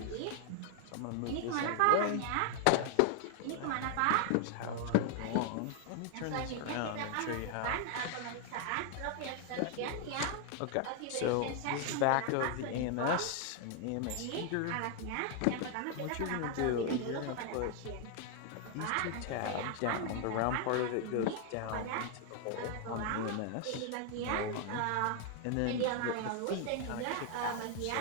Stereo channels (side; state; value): both; different; correlation 0.00